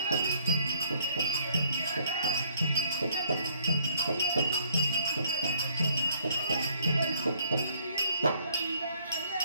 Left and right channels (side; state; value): both; inverted; correlation -0.63